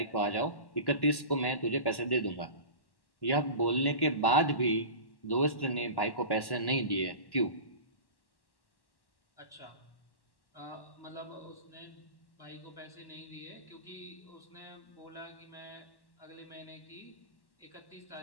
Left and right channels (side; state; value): right; late; 1.1 ms